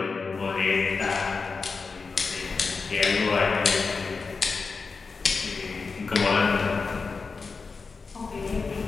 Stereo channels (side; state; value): right; quieter; 4.6 dB